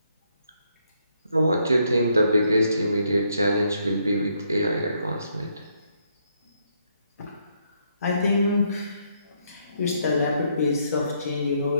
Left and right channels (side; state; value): both; inverted; correlation -0.74